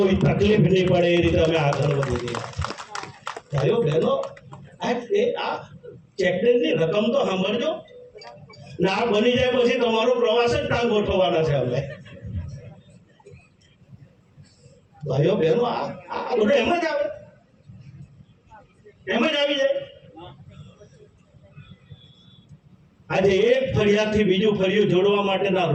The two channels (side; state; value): both; identical; correlation 1.00